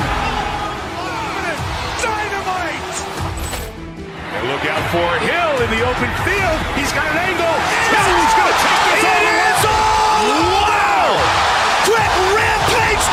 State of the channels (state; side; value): identical; both; correlation 1.00